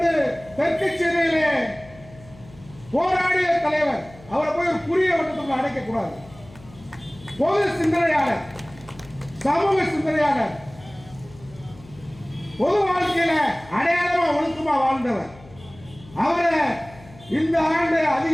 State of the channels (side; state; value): left; noise; hum, 22 dB below the sound